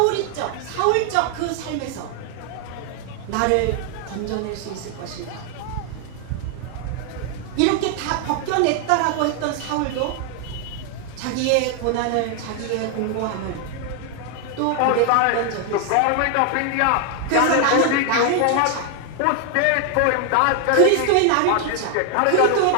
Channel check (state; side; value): different; both; correlation 0.00